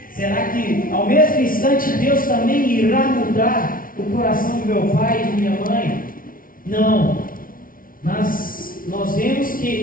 será que ao mesmo instante Deus também irá mudar o coração do meu pai e de minha mãe? Não, mas nós vemos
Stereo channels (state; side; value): late; right; 0.41 ms